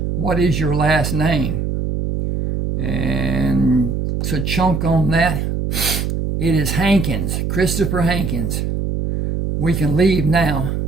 What is your last name? And to chunk on that, it is Hankins, Christopher Hankins. We can leave now.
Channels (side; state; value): right; noise; hum, 2 dB below the sound